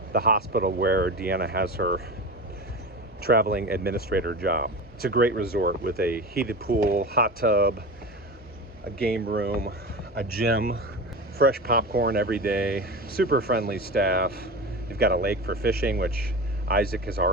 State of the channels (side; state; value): both; normal; correlation 0.28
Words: the hospital where Deanna has her traveling administrator job. It's a great resort with a heated pool, hot tub, a game room, a gym, fresh popcorn every day, super friendly staff. You've got a lake for fishing, which Isaac has